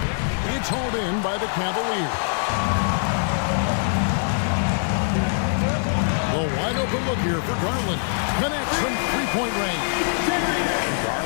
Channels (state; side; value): silent; right; 63 dB below the other